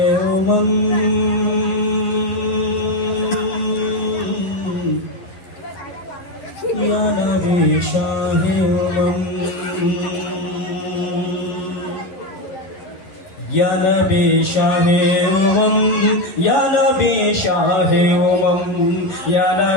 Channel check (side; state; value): right; late; 11 ms